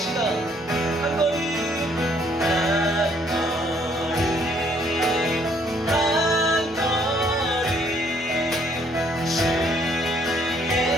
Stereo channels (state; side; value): normal; both; correlation 0.65